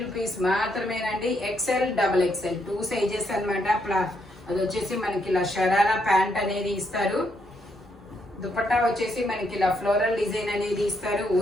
రూపీస్ మాత్రమేనండి. XL XXL 2 సైజెస్ అన్నమాట. అది వచ్చేసి మనకి ఇలా షరారా ప్యాంట్ అనేది ఇస్తారు. దుపట్టా వచ్చేసి మనకి ఇలా ఫ్లోరల్ డిజైన్ అనేది ఇస్తారు.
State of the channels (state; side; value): normal; both; correlation 0.76